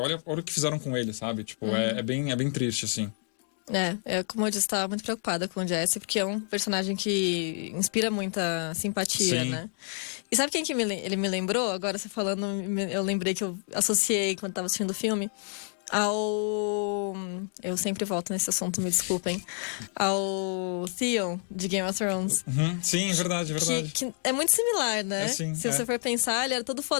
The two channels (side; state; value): right; silent; 59 dB below the other